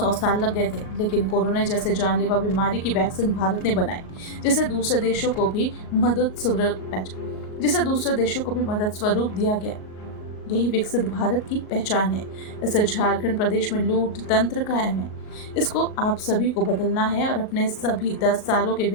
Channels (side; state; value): right; late; 38 ms